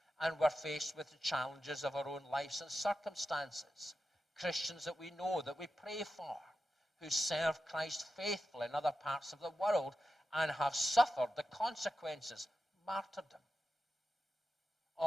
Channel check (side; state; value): both; normal; correlation 0.91